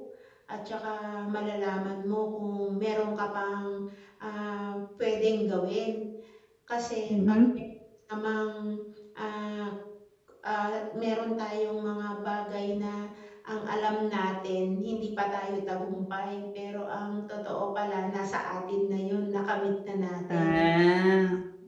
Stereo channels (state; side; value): identical; both; correlation 1.00